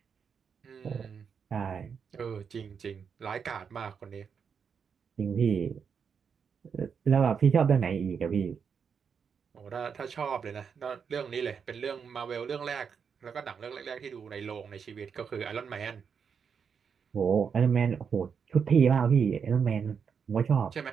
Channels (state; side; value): quieter; left; 6.6 dB